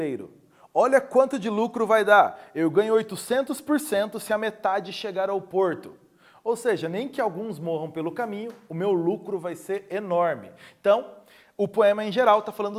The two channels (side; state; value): both; identical; correlation 1.00